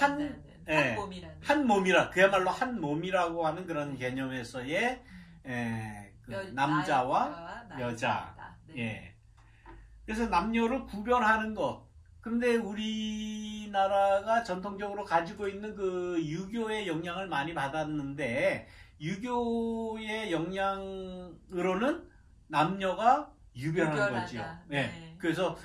몸이라 그야말로 한 몸이라고 하는 그런 개념에서의 남자와 여자. 예. 그래서 남녀를 구별하는 것. 그런데 우리나라가 전통적으로 가지고 있는 그 유교의 영향을 많이 받았는데 유교의 영향으로는 남녀가 유별한 거죠. 네. 그래서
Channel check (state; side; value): identical; both; correlation 1.00